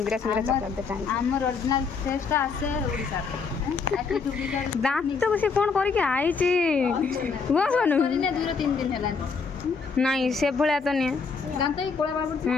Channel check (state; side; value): quieter; right; 5.1 dB